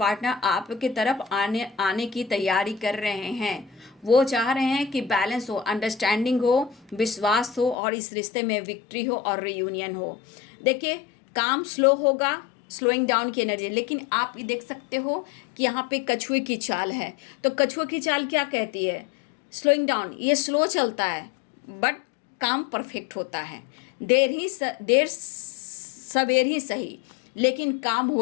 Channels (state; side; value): drops out; right; at 7.8 s